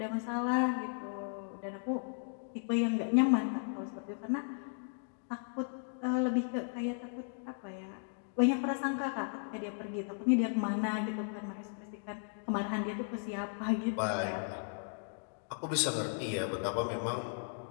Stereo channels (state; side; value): silent; right; digital silence